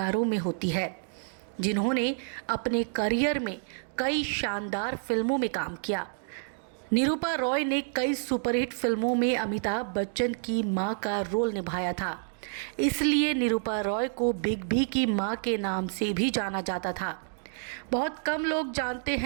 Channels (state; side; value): silent; left; digital silence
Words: में होती है, जिन्होंने अपने करियर में कई शानदार फिल्मों में काम किया। निरूपा रॉय ने कई सुपरहिट फिल्मों में अमिताभ बच्चन की मां का रोल निभाया था, इसलिए निरूपा रॉय को बिग बी की मां के नाम से भी जाना जाता था। बहुत कम लोग जानते